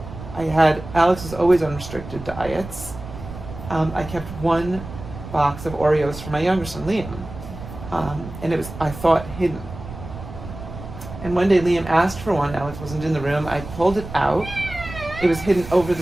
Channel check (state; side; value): noise; right; rumble, 12 dB below the sound